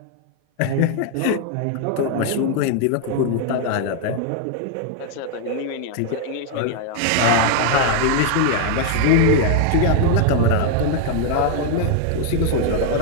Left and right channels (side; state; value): both; different; correlation 0.00